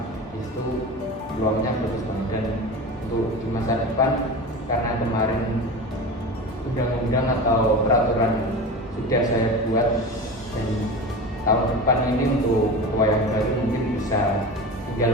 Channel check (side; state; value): both; normal; correlation 0.29